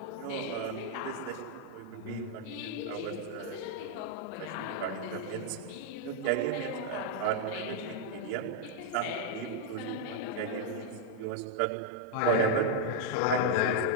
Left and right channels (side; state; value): both; different; correlation 0.00